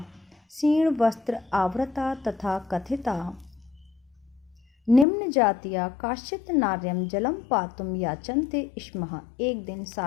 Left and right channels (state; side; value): drops out; right; at 5.1 s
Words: क्षीण वस्त्र आवृता तथा कथिता निम्न जातिया काश्चित् नार्यम जलम पातुम याचन्ते स्मः। एक दिन